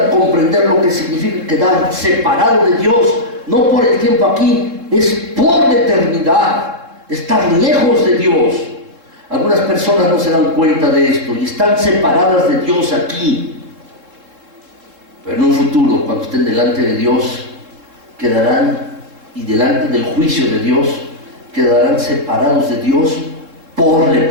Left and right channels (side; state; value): left; late; 3.7 ms